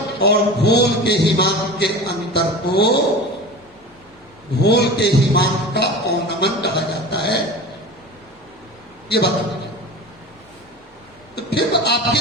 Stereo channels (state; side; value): normal; both; correlation 0.33